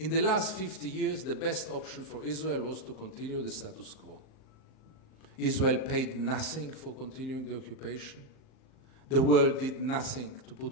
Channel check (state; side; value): late; right; 38 ms